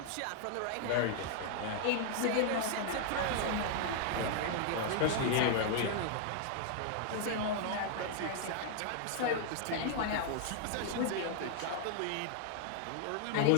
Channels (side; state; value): both; different; correlation 0.00